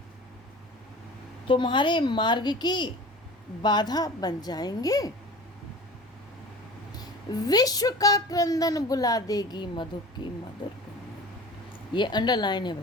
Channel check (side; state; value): both; normal; correlation 0.39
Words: तुम्हारे मार्ग की बाधा बन जाएंगे। विश्व का क्रंदन बुला देगी मधुप की मधुर गुनगुन। ये अंडरलाइन है